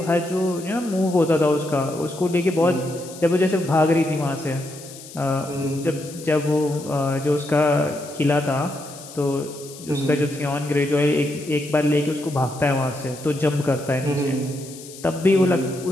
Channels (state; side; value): noise; left; hiss, 16 dB below the sound